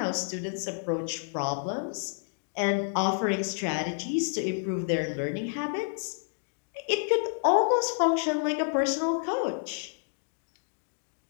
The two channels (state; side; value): silent; right; digital silence